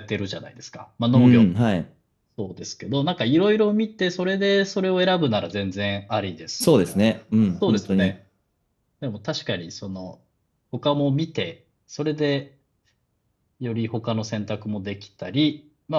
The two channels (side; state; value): both; identical; correlation 1.00